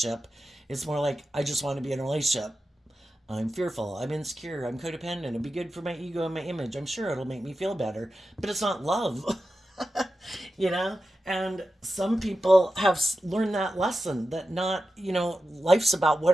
It's more like, I just want to be in a relationship. I'm fearful, I'm insecure, I'm codependent, it'll be good for my ego and my image. I'm sure it'll make me feel better, but it's not love. You know? And some people have learned that lesson that not, you know, life's about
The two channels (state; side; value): normal; both; correlation 0.92